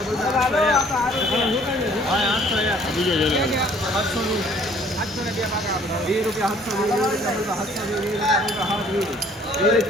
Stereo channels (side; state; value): both; normal; correlation 0.58